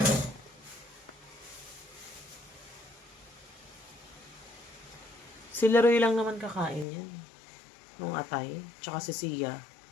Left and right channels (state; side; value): drops out; right; at 6.9 s